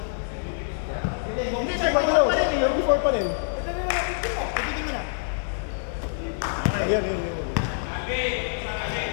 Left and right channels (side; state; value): right; silent; digital silence